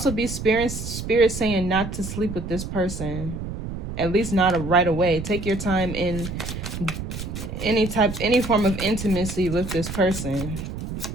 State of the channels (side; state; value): right; noise; rumble, 7 dB below the sound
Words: be spirit saying not to sleep with this person. At least not right away. Take your time in any form of intimacy with this person.